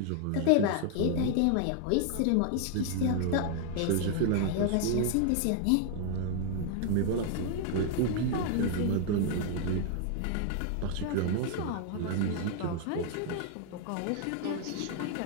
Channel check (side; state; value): both; different; correlation 0.00